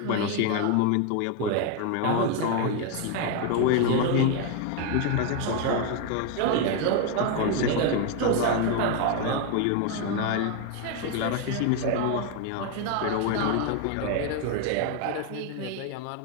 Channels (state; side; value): different; both; correlation 0.01